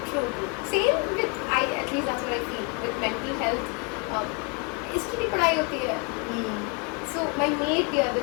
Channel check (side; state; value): right; quieter; 32.6 dB